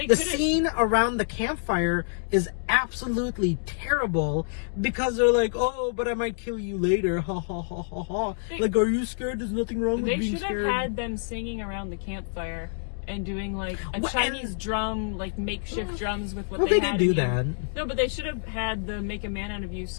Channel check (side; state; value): right; silent; digital silence